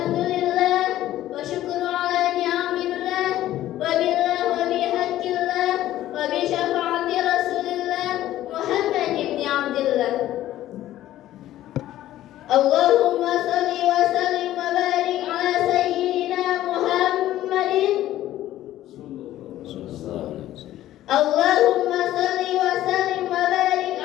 wa syukru ala ni'amillah, wa billah wa bihaqqillah, wa bi syafaati Rasulillah Muhammad ibn Abdillah. Allahumma shalli wa sallim wa barik ala sayyidina Muhammadin. Allahumma shalli wa sallim wa barik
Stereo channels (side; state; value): right; quieter; 13.8 dB